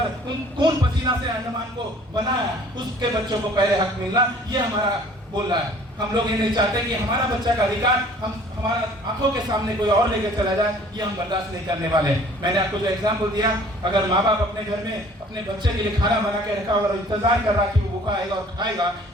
खून पसीना से अंडमान को बनाया, उसके बच्चों को पहले हक मिलना, ये हमारा बोल रहा है। हम लोग ये नहीं चाहते कि हमारा बच्चा का अधिकार हमारा आंखों के सामने कोई और लेके चला जाए, ये हम बर्दाश्त नहीं करने वाले। मैंने आपको जो एग्जाम्पल दिया, अगर माँ बाप अपने घर में अपने बच्चे के लिए खाना बना के रखा और इंतजार कर रहा कि वो भूखा आएगा और खाएगा,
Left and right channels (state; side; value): normal; both; correlation 0.53